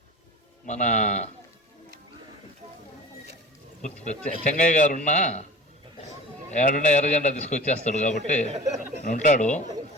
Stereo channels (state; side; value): normal; both; correlation 0.38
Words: మన చెంగయ్య గారు ఉన్నా ఏడున్నా ఎర్రజెండా తీసుకొచ్చేస్తాడు కాబట్టి ఉంటాడు.